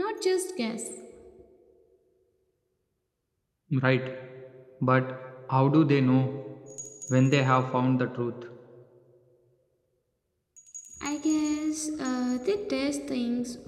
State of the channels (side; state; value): both; identical; correlation 1.00